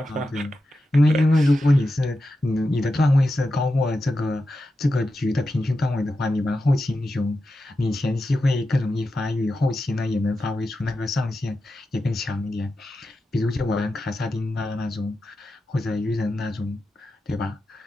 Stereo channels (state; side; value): normal; both; correlation 0.90